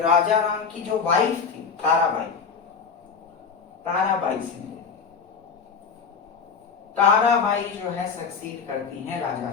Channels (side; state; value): right; quieter; 5.7 dB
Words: राजा राम की जो वाइफ थी ताराबाई सिंह, ताराबाई जो है सक्सीड करती हैं राजा